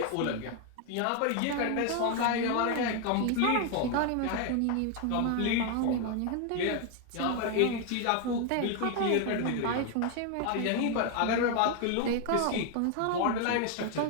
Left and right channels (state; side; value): different; both; correlation 0.01